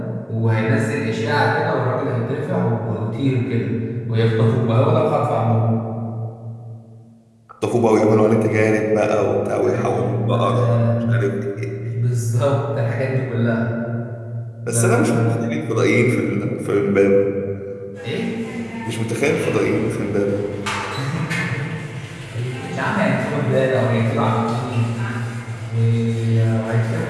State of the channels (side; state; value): both; identical; correlation 1.00